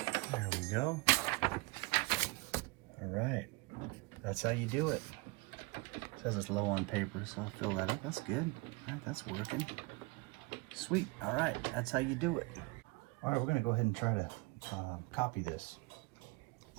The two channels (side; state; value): left; quieter; 26.0 dB